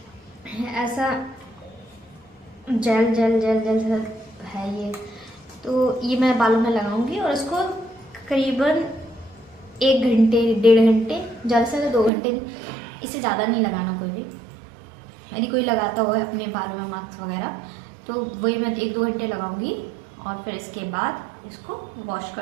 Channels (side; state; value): left; drops out; at 12.1 s